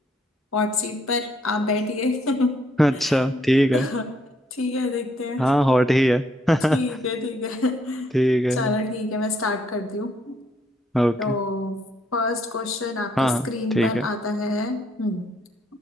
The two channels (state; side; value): normal; both; correlation 0.71